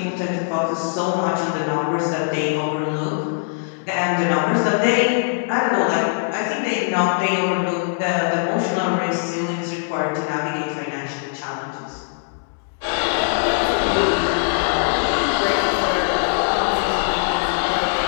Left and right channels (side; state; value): right; silent; digital silence